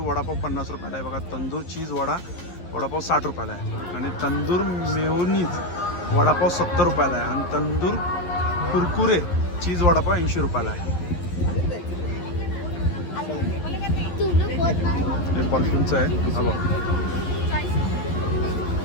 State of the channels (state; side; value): late; right; 11 ms